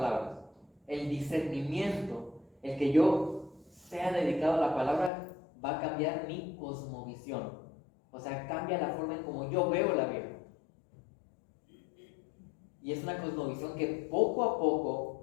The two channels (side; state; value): right; drops out; at 5.1 s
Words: el discernimiento, el que yo sea dedicado a la palabra, va a cambiar mi cosmovisión. O sea, cambia la forma en cómo yo veo la vida. Y es una cosmovisión que poco a